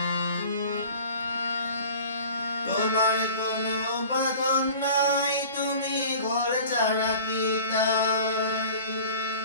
তোমার কোনো বাঁধন নাই, তুমি ঘর ছাড়া কি তাই।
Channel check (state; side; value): inverted; both; correlation -0.43